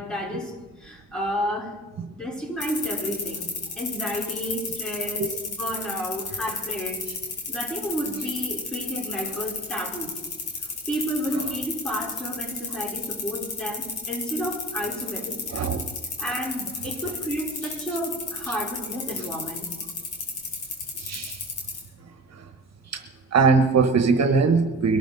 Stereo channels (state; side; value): normal; both; correlation 0.37